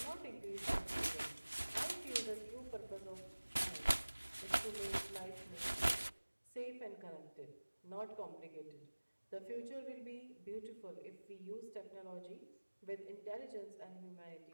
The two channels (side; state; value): both; inverted; correlation -1.00